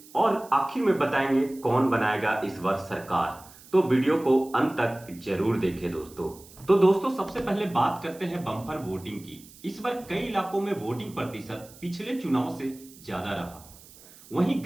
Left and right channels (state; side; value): noise; right; hiss, 22 dB below the sound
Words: और आखिर में बताएंगे कौन बनाएगा इस बार सरकार। तो वीडियो को अंत तक जरूर देखें दोस्तों। तो दोस्तों, सबसे पहले बात करते हैं बम्पर वोटिंग की। इस बार कई इलाकों में वोटिंग प्रतिशत पिछले चुनाव से ज्यादा रहा। वहीं